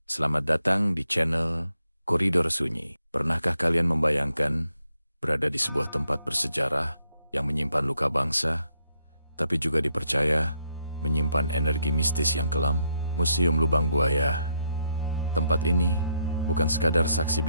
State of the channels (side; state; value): both; inverted; correlation -0.77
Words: selamat datang di channel Koridor Sunyi. Pernahkah kalian membayangkan berada di sebuah tempat bersejarah yang menyimpan luka bangsa, tapi juga dipercaya menyimpan energi mistis yang kelam? Museum Lubang Buaya. Tempat ini bukan sekadar saksi